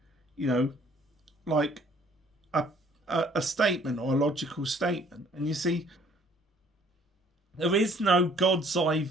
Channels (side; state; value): both; normal; correlation 0.59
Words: like a statement or a logical statement. And you see, there is no God's eye